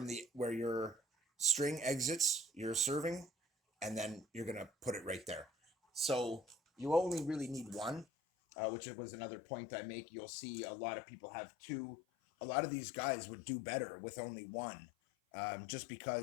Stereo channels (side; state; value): right; drops out; at 8.1 s